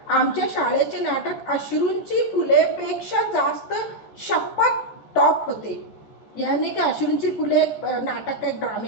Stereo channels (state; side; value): late; right; 14 ms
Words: आमच्या शाळेचे नाटक अश्रूंची फुलेपेक्षा जास्त शपथ टॉप होते, यानी कि अश्रूंची फुले नाटक का एक